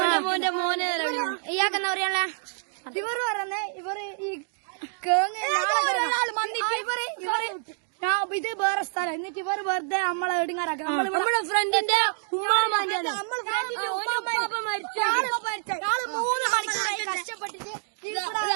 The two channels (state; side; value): silent; left; digital silence